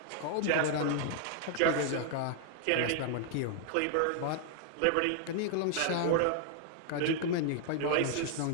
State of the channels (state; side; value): different; both; correlation 0.00